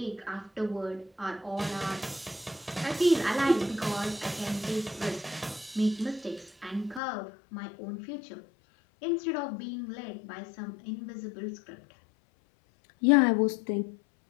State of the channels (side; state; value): right; drops out; at 7.0 s